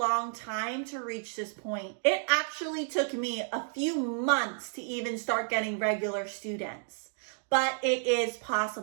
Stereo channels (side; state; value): left; silent; digital silence